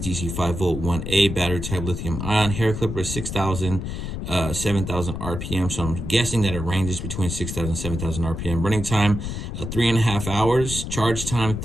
5V 1A, battery type lithium ion. Hair clipper 6,000, 7,000 RPM. So I'm guessing that it ranges between 6,000 and 7,000 RPM. Running time, 3.5 hours. Charge time,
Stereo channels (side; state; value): left; noise; rumble, 5 dB below the sound